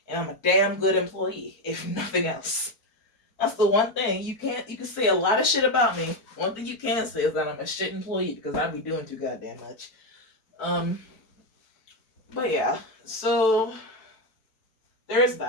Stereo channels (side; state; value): right; late; 4.5 ms